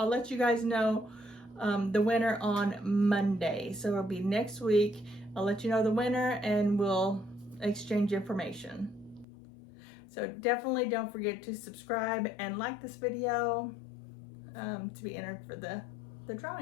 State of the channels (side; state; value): right; drops out; at 9.2 s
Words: let you guys know the winner on Monday. So it'll be next week. I'll let you know the winner and we'll exchange information. So definitely don't forget to subscribe and like this video to be entered for the